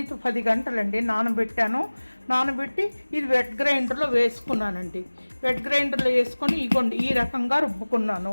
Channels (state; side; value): inverted; both; correlation -1.00